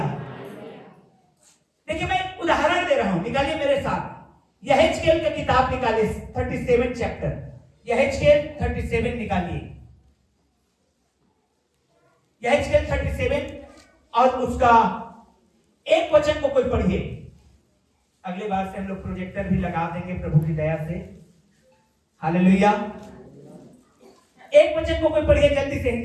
देखिए, मैं एक उदाहरण दे रहा हूं, निकालिए मेरे साथ। यहेजकेल की किताब निकालिए, 37 चैप्टर। यहेजकेल 37 निकालिए। यहेजकेल 37 और उसका एक वचन को कोई पढ़िए। अगले बार से हम लोग प्रोजेक्टर भी लगा देंगे प्रभु की दया से। हालेलुया। एक वचन को कोई पढ़िए, जल्दी से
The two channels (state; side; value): identical; both; correlation 1.00